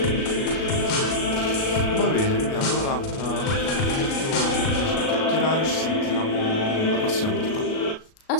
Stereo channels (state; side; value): late; right; 37 ms